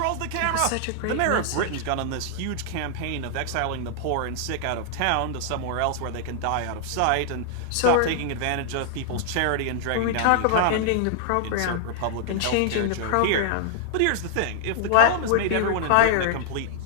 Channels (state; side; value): different; both; correlation -0.01